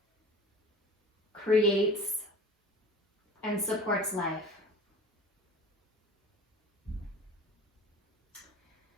creates and supports life.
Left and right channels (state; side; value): normal; both; correlation 0.40